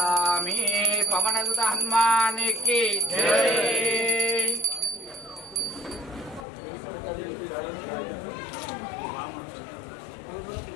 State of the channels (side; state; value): right; drops out; at 6.5 s